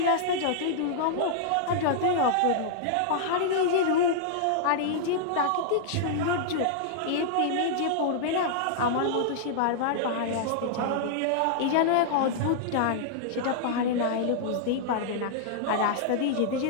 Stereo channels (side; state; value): both; different; correlation -0.01